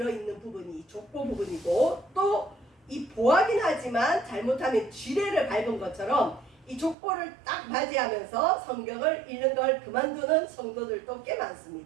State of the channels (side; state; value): left; drops out; at 7.0 s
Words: 부분이 족보 부분이고, 또 이 보화긴 하지만 잘못하면 지뢰를 밟은 것처럼 이 족보를 딱 맞이하면서 성경을 읽는 걸 그만두는 성도들도 꽤